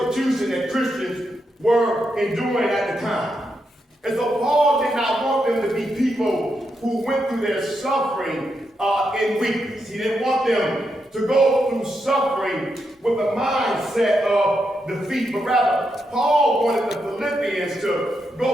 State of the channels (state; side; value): normal; both; correlation 0.83